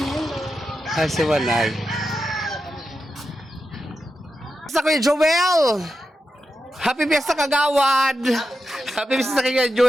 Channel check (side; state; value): both; normal; correlation 0.89